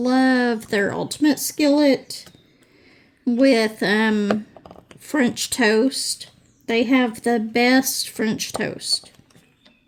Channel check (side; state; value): both; identical; correlation 1.00